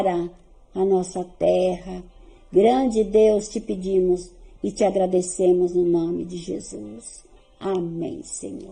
a nossa terra, grande Deus, te pedimos e te agradecemos no nome de Jesus. Amém,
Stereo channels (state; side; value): identical; both; correlation 1.00